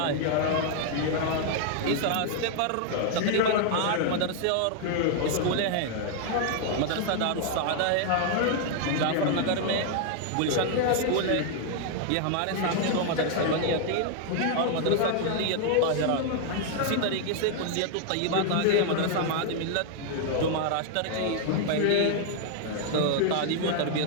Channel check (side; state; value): both; different; correlation 0.00